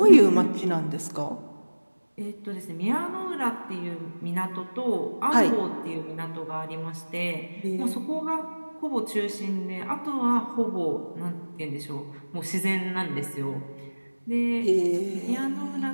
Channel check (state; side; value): inverted; both; correlation -1.00